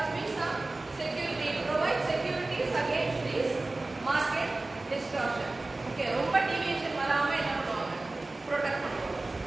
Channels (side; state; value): left; quieter; 3.1 dB